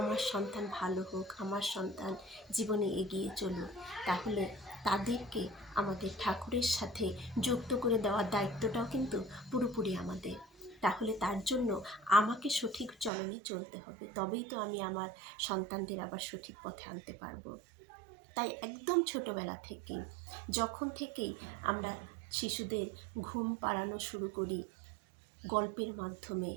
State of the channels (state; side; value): drops out; left; at 13.1 s